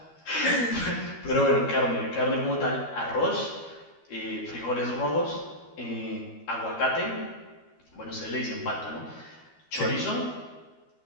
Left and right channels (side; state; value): right; late; 13 ms